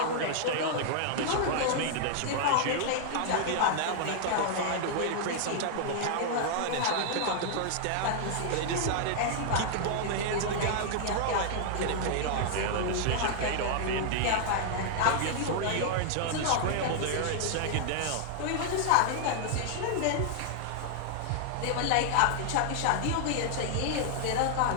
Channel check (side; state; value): both; different; correlation -0.01